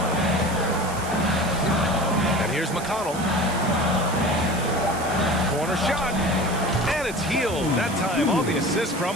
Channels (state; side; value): noise; right; hiss, 13 dB below the sound